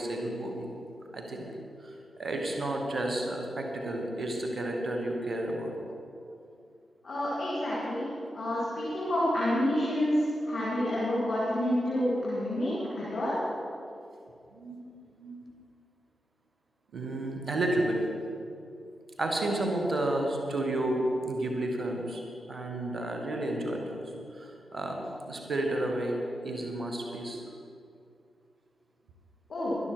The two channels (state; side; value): normal; both; correlation 0.86